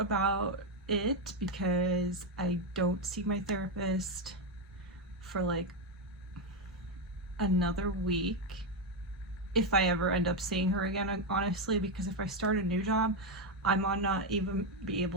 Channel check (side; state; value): both; normal; correlation 0.06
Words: it because I don't see my therapist for like another week, if I ever end up seeing her again, honestly, because if I start a new job, I might not even be